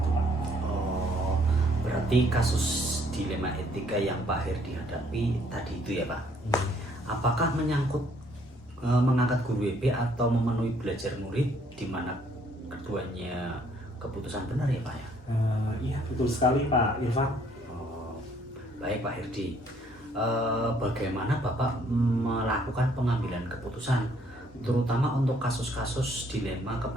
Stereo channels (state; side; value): normal; both; correlation 0.64